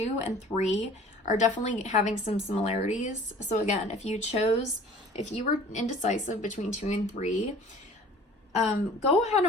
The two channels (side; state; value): both; normal; correlation 0.48